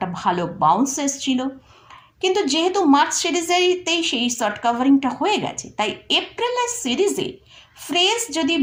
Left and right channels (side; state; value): both; identical; correlation 1.00